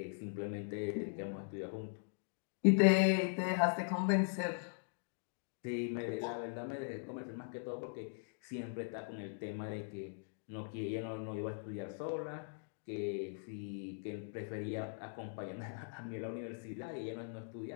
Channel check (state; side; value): silent; right; digital silence